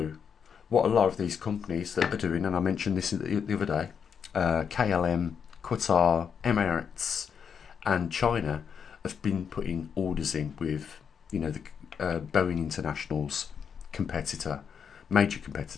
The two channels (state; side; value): quieter; right; 7.0 dB